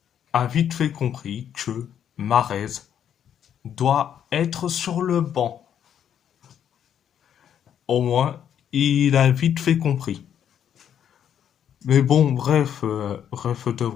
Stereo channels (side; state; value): right; quieter; 9.2 dB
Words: a vite fait compris que Mahrez doit être sur le banc. Au moins, il a vite fait compris. Mais bon, bref, bref de